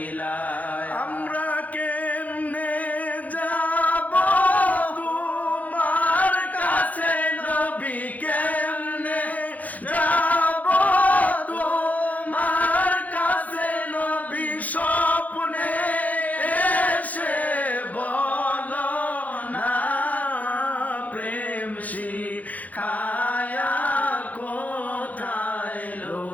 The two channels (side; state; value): right; late; 0.077 ms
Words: আমরা কেমনে যাব তোমার কাছে নবী কেমনে যাব তোমার কাছে নবী স্বপ্নে এসে বলো না প্রেম শিখায়া কোথায়